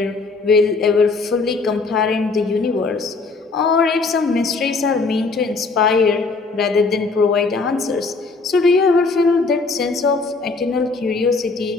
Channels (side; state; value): right; quieter; 4.0 dB